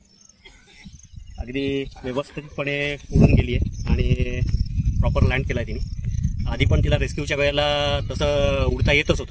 अगदी व्यवस्थितपणे उडून गेली आहे आणि प्रॉपर लँड केला आहे तिने. आधी पण तिला रेस्क्यूच्या वेळेला तसं उडता येतच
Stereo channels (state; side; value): identical; both; correlation 1.00